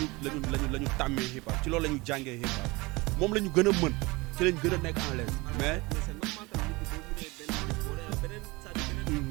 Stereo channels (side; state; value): left; quieter; 23.8 dB